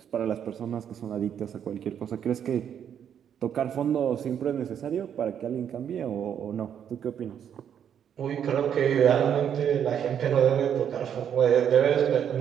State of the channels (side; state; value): left; quieter; 8.8 dB